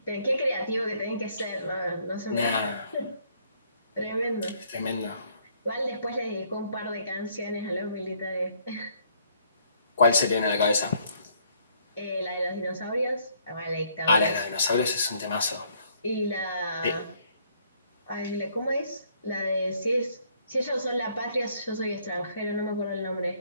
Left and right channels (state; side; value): inverted; both; correlation -0.66